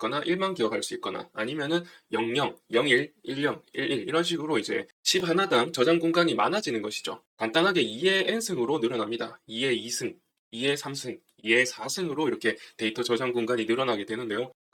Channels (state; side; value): identical; both; correlation 1.00